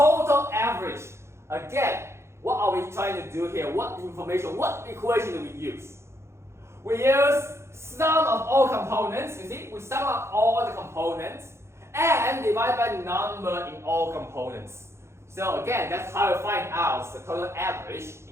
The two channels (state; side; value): late; left; 0.13 ms